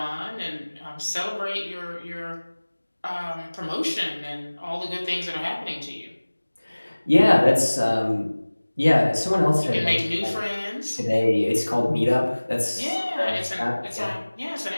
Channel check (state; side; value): inverted; both; correlation -1.00